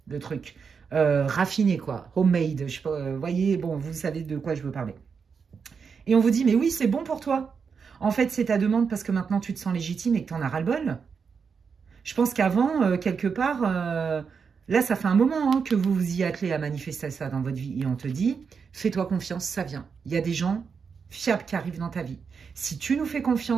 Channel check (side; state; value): left; quieter; 5.9 dB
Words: le truc. Raffiné, quoi. Homemade. Je sais pas, voyez, bon, vous savez de quoi je veux parler. Et on vous dit, mais oui, c'est bon pour toi. En fait, c'est ta demande parce que maintenant, tu te sens légitime et que tu en as ras-le-bol. Je pense qu'avant, quelque part, là, ça fait un moment hein, que vous vous y attelez à manifester ça dans votre vie. Et on te dit, fais-toi confiance, ça vient. Il y a des gens fiables qui arrivent dans ta vie. Si tu nous fais